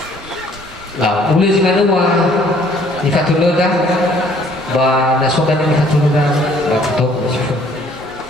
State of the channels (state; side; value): normal; both; correlation 0.59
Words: Lah, boleh sih manu mah. Di fatulur dah. Ba nasokan di fatulur dah. Ba betul sih.